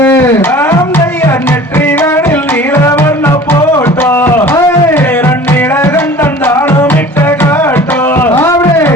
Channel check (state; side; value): normal; both; correlation 0.44